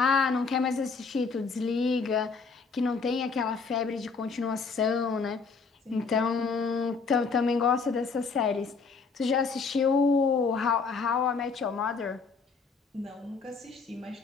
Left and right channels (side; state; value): right; quieter; 4.9 dB